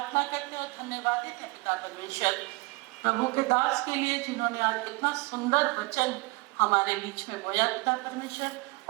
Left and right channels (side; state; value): left; quieter; 24.9 dB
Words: करते हैं और धन्यवादित हैं पिता परमेश्वर प्रभु के दास के लिए जिन्होंने आज इतना सुंदर वचन हमारे बीच में बोया पिता परमेश्वर।